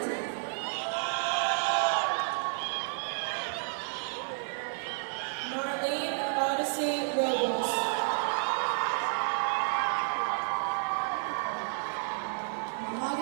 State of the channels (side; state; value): left; silent; digital silence